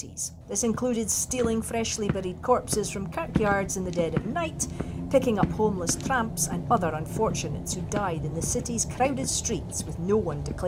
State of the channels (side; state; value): both; identical; correlation 1.00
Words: This included stealing freshly buried corpses from kirkyards in the dead of night, picking up homeless tramps and other unfortunates who died in the city's crowded streets with no one to